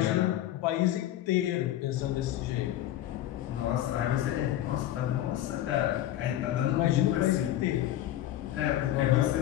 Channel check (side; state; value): right; quieter; 13.1 dB